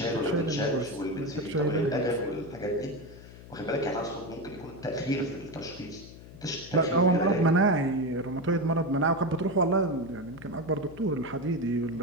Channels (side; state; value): left; noise; hum, 17 dB below the sound